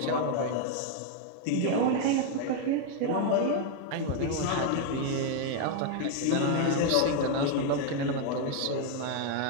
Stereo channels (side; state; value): both; different; correlation 0.00